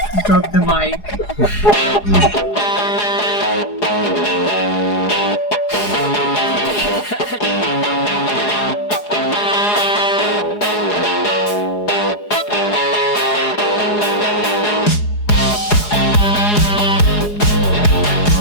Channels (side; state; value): right; late; 4.8 ms